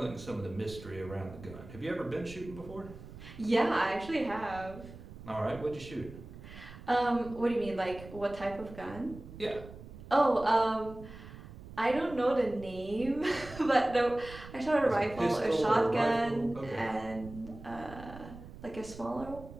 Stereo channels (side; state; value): right; noise; rumble, 15 dB below the sound